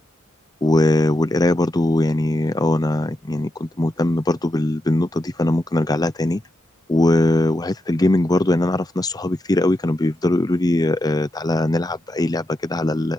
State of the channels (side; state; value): both; normal; correlation 0.85